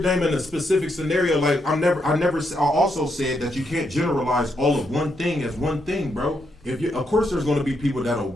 a specific scenario. Like I also said that you can't generalize all of one thing as one thing, bro. Of course, there's going to be people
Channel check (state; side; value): normal; both; correlation 0.79